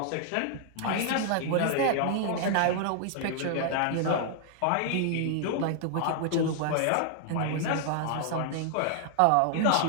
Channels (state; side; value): different; both; correlation 0.00